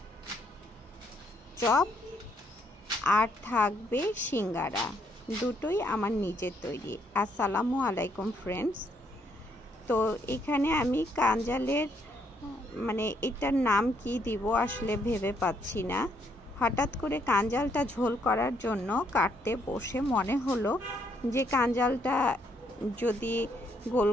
চপ আর থাকবে সিঙ্গারা, দুটোই আমার নিজের তৈরি। আসসালামু আলাইকুম ফ্রেন্ডস। তো এখানে আমি কাঞ্জালের এটার নাম কি দিব আসলে ভেবে পাচ্ছি না। হঠাৎ করে কাঞ্জালটা ঝোল করার জন্য কাটতে বসে মনে হলো যে কাঞ্জালটা যদি গোল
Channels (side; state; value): both; normal; correlation 0.72